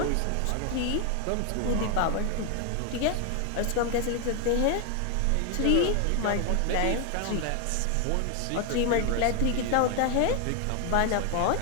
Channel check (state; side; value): different; both; correlation 0.01